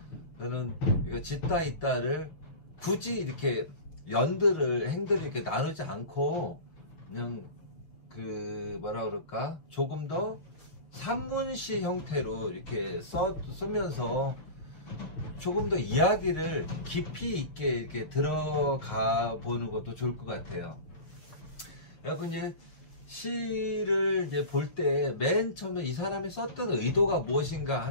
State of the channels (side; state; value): right; late; 6.5 ms